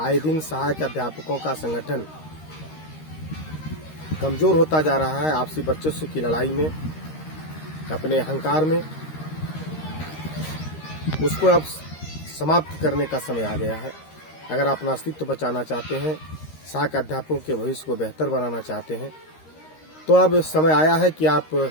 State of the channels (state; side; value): late; right; 13 ms